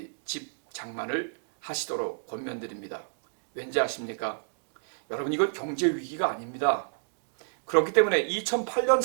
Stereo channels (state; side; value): silent; left; digital silence